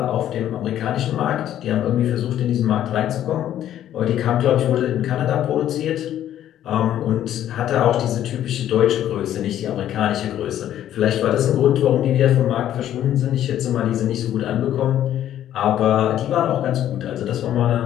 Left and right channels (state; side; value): quieter; right; 11.5 dB